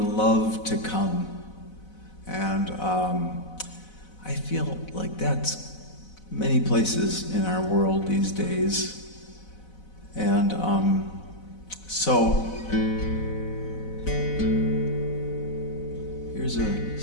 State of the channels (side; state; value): right; late; 4.0 ms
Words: to come. And I feel like that's many places in our world these days. And so here's a